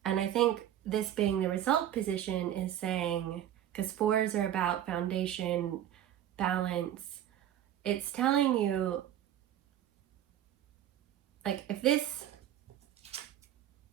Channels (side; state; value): left; quieter; 11.4 dB